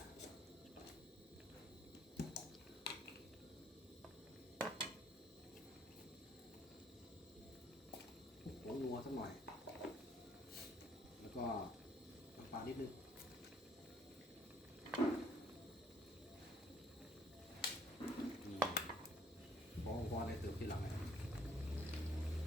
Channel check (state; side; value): normal; both; correlation 0.64